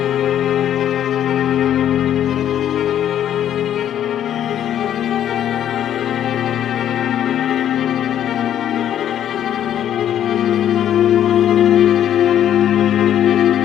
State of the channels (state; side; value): quieter; right; 10.6 dB